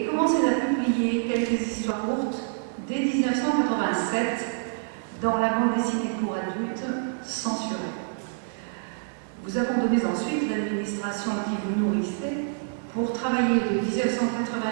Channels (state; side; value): silent; left; digital silence